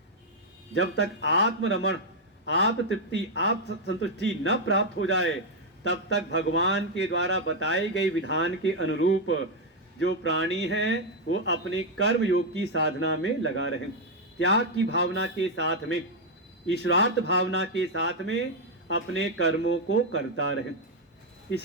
जब तक आत्मरमण, आत्म तृप्ति, आत्म संतुष्टि न प्राप्त हो जाए, तब तक भगवान के द्वारा बताए गए विधान के अनुरूप जो प्राणी है वो अपने कर्म योग की साधना में लगा रहे, त्याग की भावना के साथ में, ईश्वरार्थ भावना के साथ में अपने कर्मों को करता रहे।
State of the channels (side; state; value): both; normal; correlation 0.00